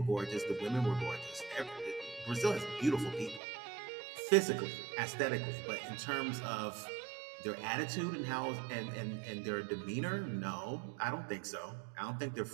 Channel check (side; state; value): left; drops out; at 3.4 s